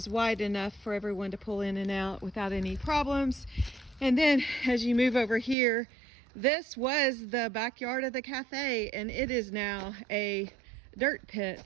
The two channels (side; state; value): left; drops out; at 5.6 s